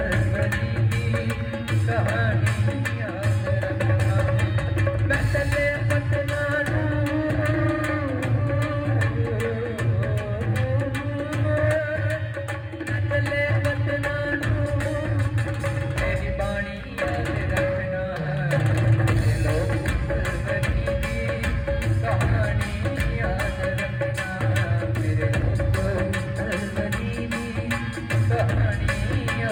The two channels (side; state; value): both; identical; correlation 1.00